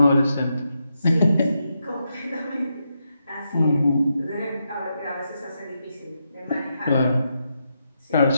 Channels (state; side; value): inverted; both; correlation -0.84